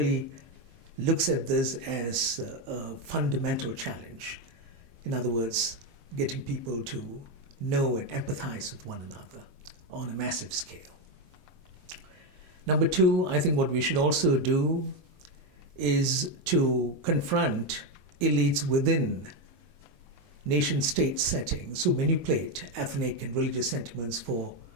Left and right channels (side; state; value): left; late; 22 ms